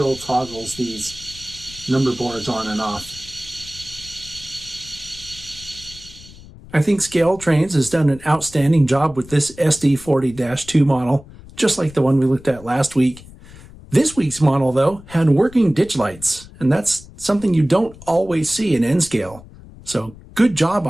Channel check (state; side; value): noise; left; rumble, 19 dB below the sound